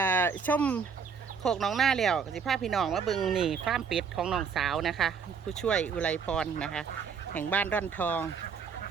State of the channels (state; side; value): quieter; left; 6.2 dB